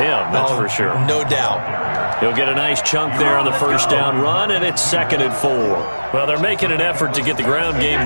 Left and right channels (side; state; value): both; inverted; correlation -1.00